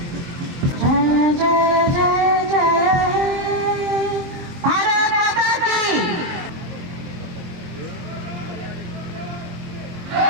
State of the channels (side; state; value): left; late; 23 ms